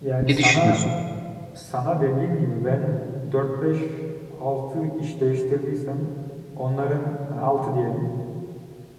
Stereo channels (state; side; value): identical; both; correlation 1.00